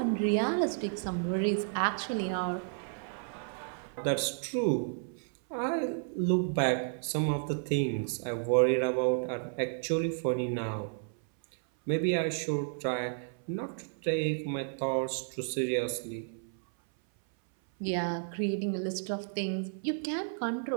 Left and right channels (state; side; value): silent; left; 56 dB below the other